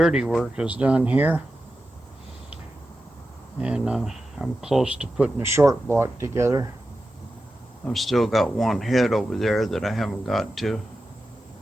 work is done here, and I'm close to putting a short block together. I've still got one head over there that I haven't got to.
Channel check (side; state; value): both; normal; correlation 0.92